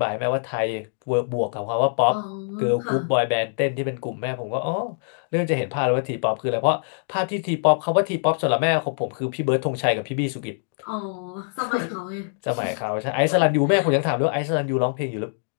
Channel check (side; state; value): right; silent; digital silence